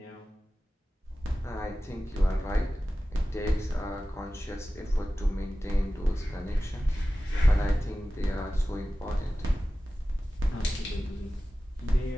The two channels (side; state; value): both; normal; correlation 0.95